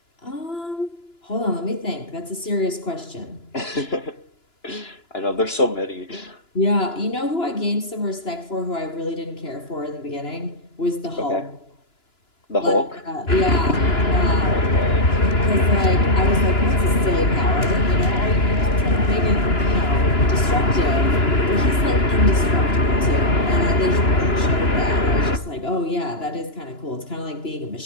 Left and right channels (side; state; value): right; late; 2.9 ms